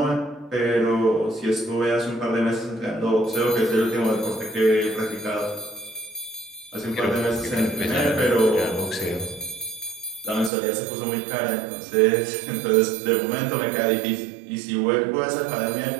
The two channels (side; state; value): left; drops out; at 10.5 s